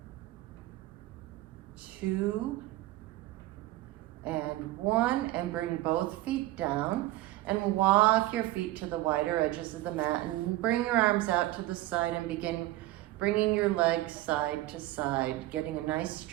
2, and 1, and bring both feet down and walk your feet to the wider edges of the mat and bring your arms out to the side and begin bringing your legs side to side, getting a nice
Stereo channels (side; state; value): left; quieter; 17.0 dB